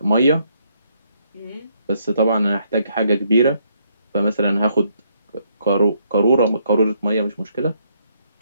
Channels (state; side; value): inverted; both; correlation -0.72